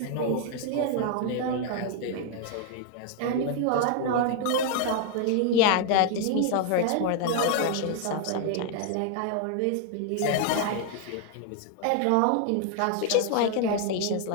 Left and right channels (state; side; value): different; both; correlation 0.00